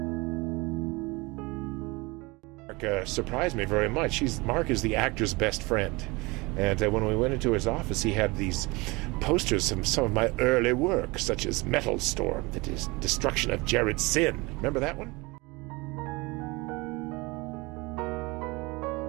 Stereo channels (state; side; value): quieter; left; 24.7 dB